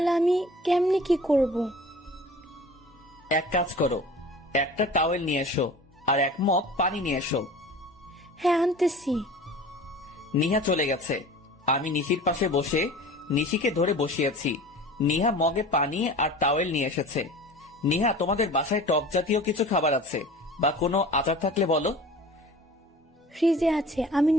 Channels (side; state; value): both; normal; correlation 0.41